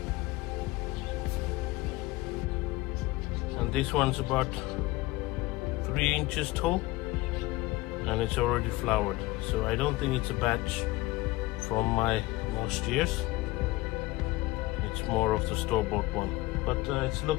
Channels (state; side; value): quieter; right; 20.1 dB